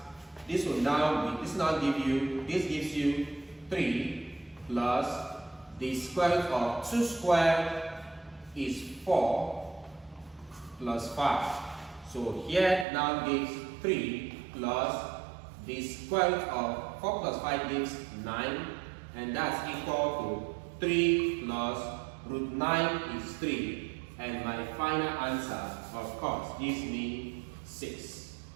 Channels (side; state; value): left; drops out; at 12.9 s